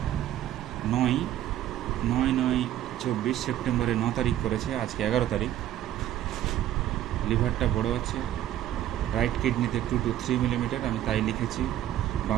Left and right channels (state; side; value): quieter; left; 12.4 dB